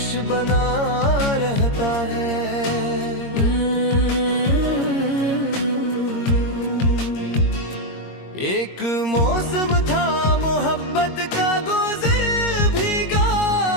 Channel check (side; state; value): right; late; 22 ms